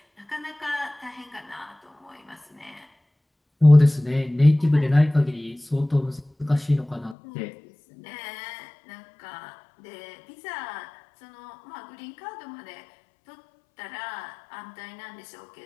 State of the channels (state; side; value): drops out; right; at 7.2 s